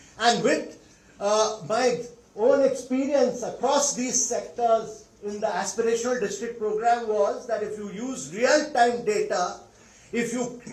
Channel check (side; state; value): both; identical; correlation 1.00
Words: And with my own experience across these sectors in the aspirational district program was that if you use real-time data, if you